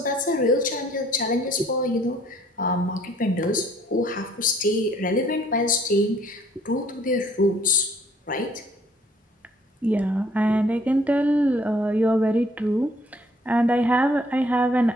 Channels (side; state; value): both; normal; correlation 0.61